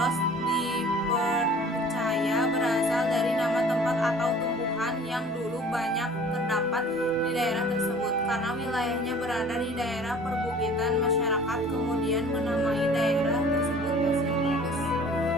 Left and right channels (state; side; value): normal; both; correlation 0.48